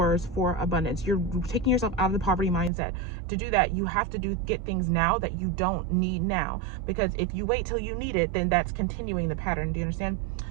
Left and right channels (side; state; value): left; drops out; at 2.7 s